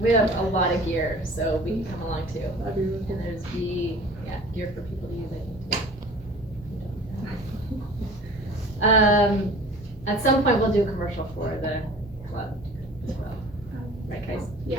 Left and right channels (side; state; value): both; normal; correlation 0.44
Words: have a lot of gear, so we can come along too. That'd be really cool. And there's gear for people to use, I think, too. At some point, we'll do a commercial for the club as well. Right, guys?